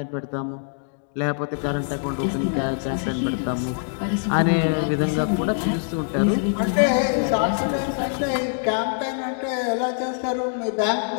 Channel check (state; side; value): silent; right; digital silence